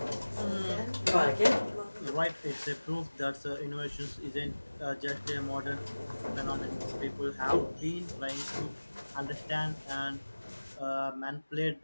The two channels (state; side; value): inverted; both; correlation -1.00